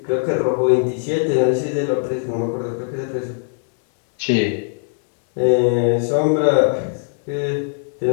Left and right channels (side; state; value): right; silent; digital silence